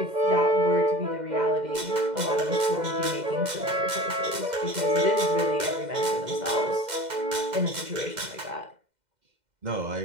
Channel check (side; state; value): left; late; 2.1 ms